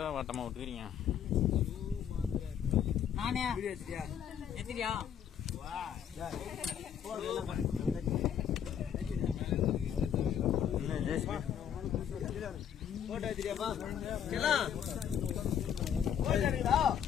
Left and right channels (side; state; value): right; quieter; 8.8 dB